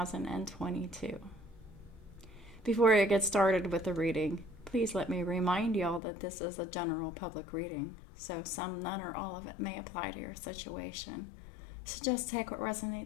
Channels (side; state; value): right; drops out; at 6.0 s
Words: Before I get started with the reading, please let me remind y'all that this is a general public reading, so some, none, or all of it may apply to your situation. So just take what